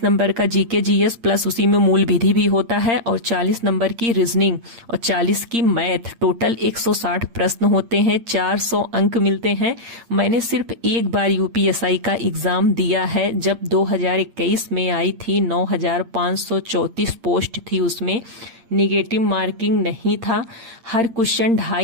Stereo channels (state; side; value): late; left; 8.7 ms